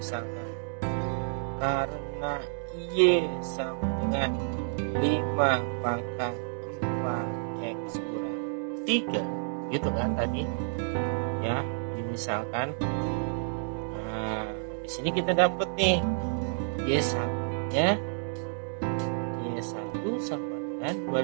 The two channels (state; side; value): silent; left; digital silence